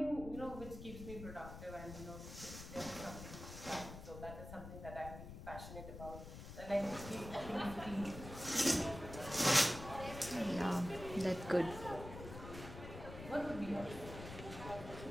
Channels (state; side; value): noise; left; rumble, 11 dB below the sound